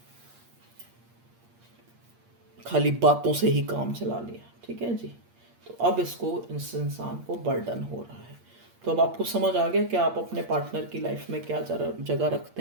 खाली बातों से ही काम चला लिया। ठीक है जी, तो अब इसको इस इंसान को बर्डन हो रहा है। तो अब आपको समझ आ गया कि आप अपने पार्टनर की लाइफ में क्या जगह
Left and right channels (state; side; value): late; left; 8.6 ms